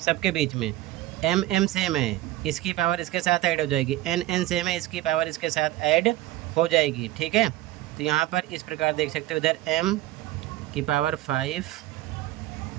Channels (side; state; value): left; quieter; 15.9 dB